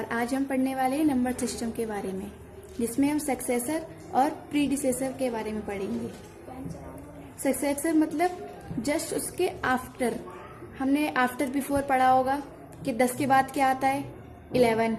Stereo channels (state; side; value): identical; both; correlation 1.00